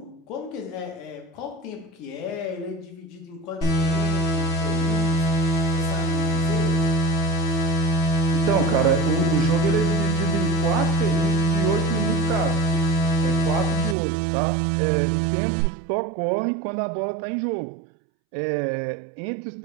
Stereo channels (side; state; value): left; drops out; at 14.0 s